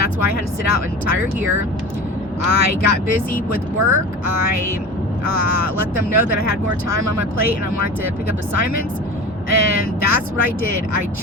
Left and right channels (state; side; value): normal; both; correlation 0.34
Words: why I had to sit out an entire year. I got busy with work. I let them know that I had more time on my plate and I wanted to pick up assignments. And that's what I did. I